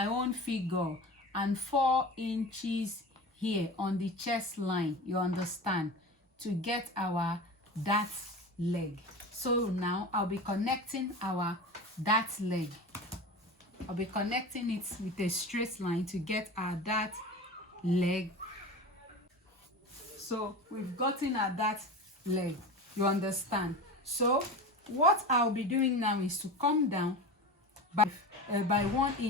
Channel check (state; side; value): normal; both; correlation 0.30